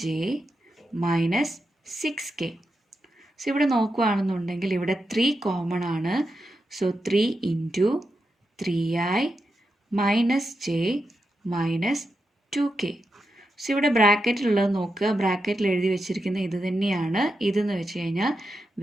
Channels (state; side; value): normal; both; correlation 0.87